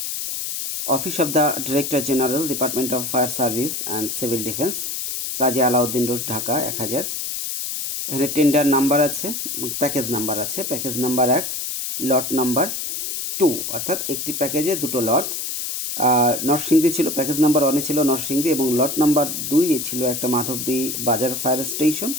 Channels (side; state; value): left; noise; hiss, 4 dB below the sound